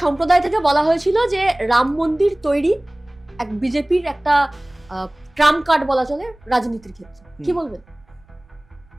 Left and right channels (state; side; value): noise; right; rumble, 30 dB below the sound